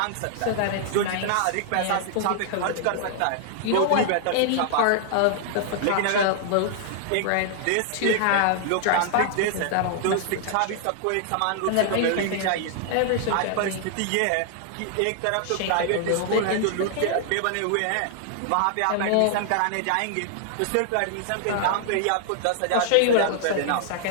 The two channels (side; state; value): both; different; correlation 0.00